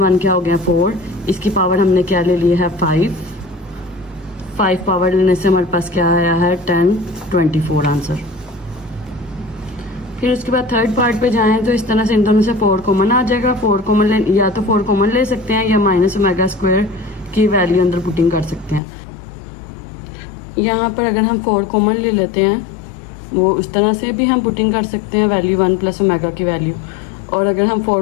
क्या हो गया 4, इसकी पावर हमने क्या ले ली है 5 पावर लेने से हमारे पास क्या आया है 10 24 आंसर। फिर उसके बाद थर्ड पार्ट पे जाएं तो इस तरह से इन दोनों से 4 कॉमन आ जाएगा। 4 कॉमन या तो 4 कॉमन ले सकते हैं या माइनस ओमेगा स्क्वायर की वैल्यू अंदर पुटिंग कर सकते हैं। यहाँ पर अगर हम 4 कॉमन ले लेते हैं वो उस तरह से भी हम पुटिंग कर सकते हैं वैल्यू 1 प्लस ओमेगा की वैल्यू, और अगर हम 4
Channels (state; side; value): drops out; right; at 18.8 s